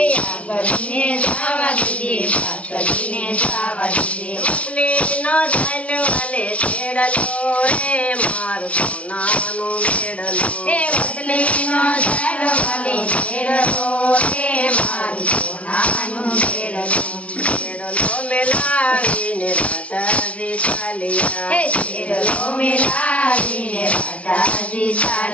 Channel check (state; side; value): late; right; 0.064 ms